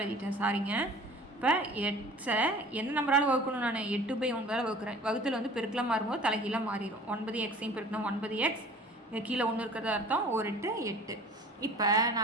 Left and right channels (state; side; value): normal; both; correlation 0.45